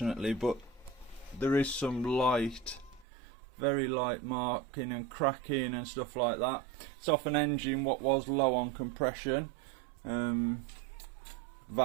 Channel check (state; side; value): drops out; left; at 3.1 s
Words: but there is some light, very light marking and cracking and stuff like that. It's off an engine what was low on compression.